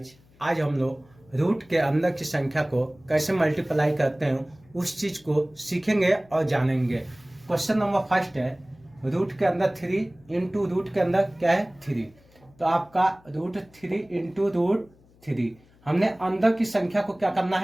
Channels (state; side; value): noise; left; hum, 29 dB below the sound